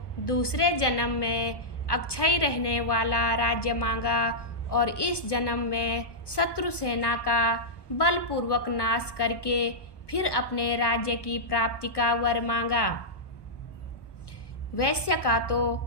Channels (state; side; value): late; right; 1.2 ms